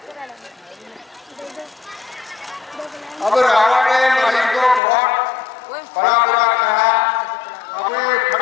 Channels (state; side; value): drops out; right; at 4.8 s